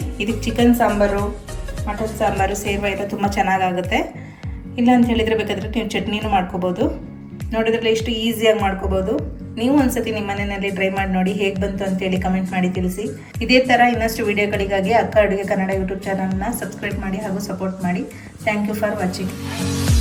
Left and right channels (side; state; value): both; identical; correlation 1.00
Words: ಇದಕ್ಕೆ ಚಿಕನ್ ಸಾಂಬಾರು, ಮಟನ್ ಸಾಂಬಾರು, ಸೇರ್ವ ಎಲ್ಲ ತುಂಬ ಚೆನ್ನಾಗಾಗುತ್ತೆ. ಇಲ್ಲ ಅಂತ ಹೇಳಿದರೆ ಬೇಕಾದರೆ ನೀವು ಚಟ್ನಿನೂ ಮಾಡ್ಕೋಬೋದು. ನೋಡಿದ್ರಲ್ಲ ಎಷ್ಟು ಈಸಿಯಾಗಿ ಮಾಡ್ಕೋಬೋದು. ನೀವು ಒಂದ್ಸತಿ ನಿಮ್ಮ ಮನೆಯಲ್ಲಿ ಟ್ರೈ ಮಾಡಿ ನೋಡಿ, ಹೇಗೆ ಬಂತು ಅಂತೇಳಿ ಕಮೆಂಟ್ ಮಾಡಿ ತಿಳಿಸಿ. ಇದೇ ಥರ ಇನ್ನಷ್ಟು ವಿಡಿಯೋಗಳಿಗಾಗಿ ಅಕ್ಕ ಅಡುಗೆ ಕನ್ನಡ ಯೂಟ್ಯೂಬ್ ಚಾನಲ್ನ ಸಬ್ಸ್ಕ್ರೈಬ್ ಮಾಡಿ ಹಾಗೂ ಸಪೋರ್ಟ್ ಮಾಡಿ. Thank you for watching.